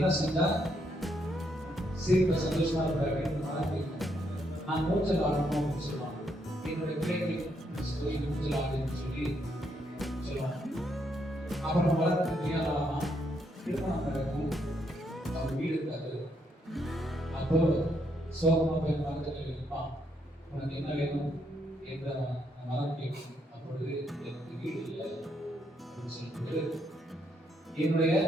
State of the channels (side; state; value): both; normal; correlation 0.76